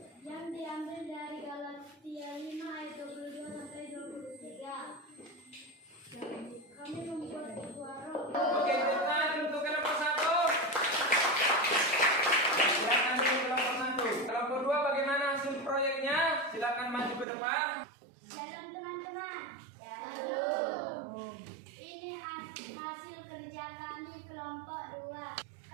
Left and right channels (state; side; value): drops out; left; at 17.2 s